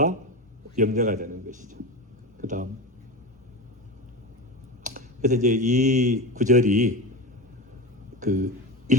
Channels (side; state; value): both; normal; correlation 0.23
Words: 염려가 되는 것이죠. 그 다음 그래서 이제 이 구절이 그